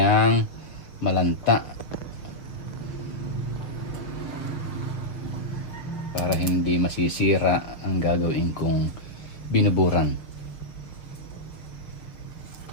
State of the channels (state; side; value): late; right; 6.4 ms